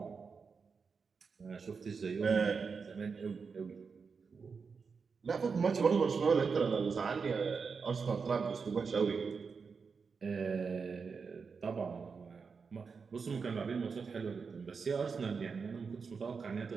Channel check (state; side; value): quieter; left; 5.3 dB